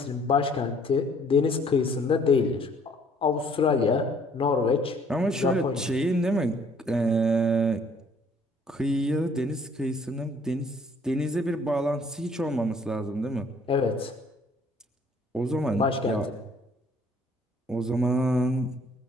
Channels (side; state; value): both; normal; correlation 0.60